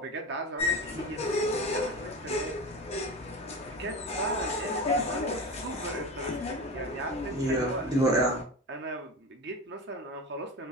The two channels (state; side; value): normal; both; correlation 0.26